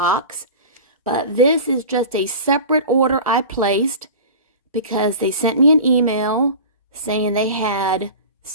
but this is just a separate order I placed because they sent me an email saying they had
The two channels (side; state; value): both; inverted; correlation -0.35